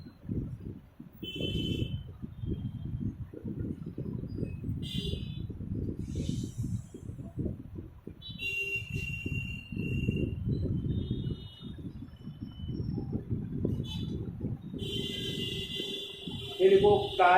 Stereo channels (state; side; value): identical; both; correlation 1.00